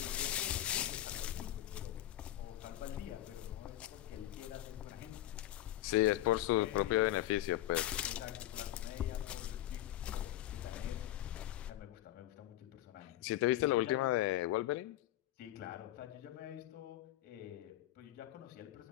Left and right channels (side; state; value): right; quieter; 14.1 dB